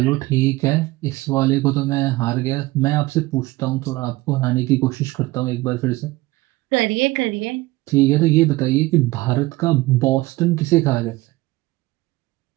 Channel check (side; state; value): left; quieter; 19.8 dB